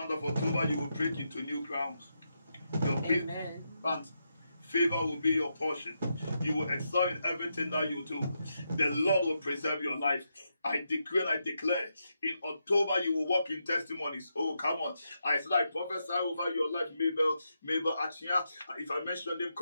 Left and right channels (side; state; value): both; inverted; correlation -0.84